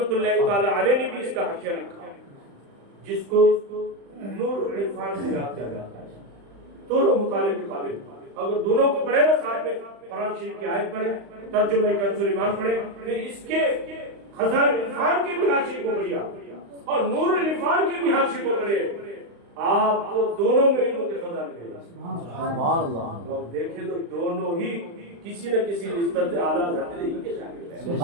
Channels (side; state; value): left; late; 35 ms